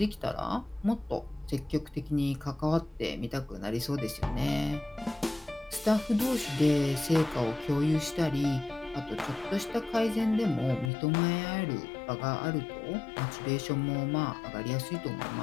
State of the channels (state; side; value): drops out; right; at 10.9 s